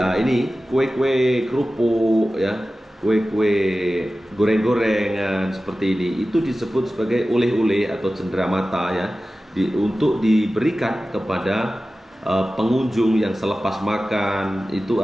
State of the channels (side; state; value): both; normal; correlation 0.95